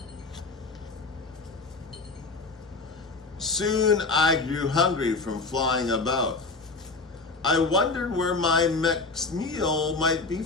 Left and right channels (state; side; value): quieter; right; 3.9 dB